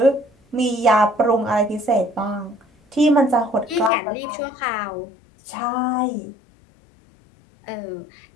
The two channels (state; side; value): drops out; right; at 3.9 s